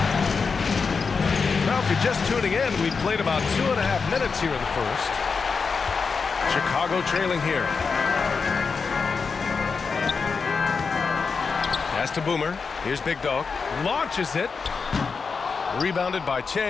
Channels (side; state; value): right; quieter; 5.1 dB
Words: Now, if you're just tuning in, we've played about 2.5 minutes here in the first. Chicago trailing here. Pass to Boomer. Here's Big Dog. Launches it. Rebounded by